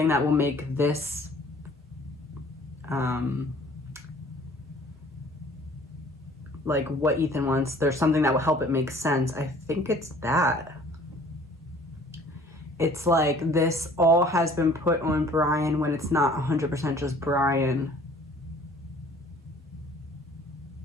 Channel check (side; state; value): both; normal; correlation 0.52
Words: that will make this like what Ethan wants, there's something that will help it make sense. I think it's that. It's like this all has been put on Brian when it's not 100% just Brian.